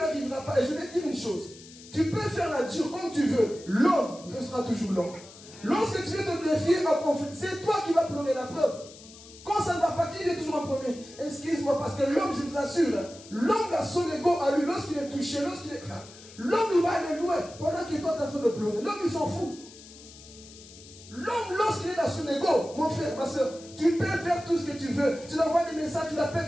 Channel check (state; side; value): noise; left; hiss, 19 dB below the sound